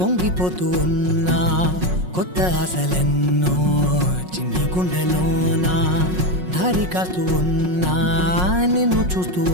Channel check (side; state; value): left; late; 5.5 ms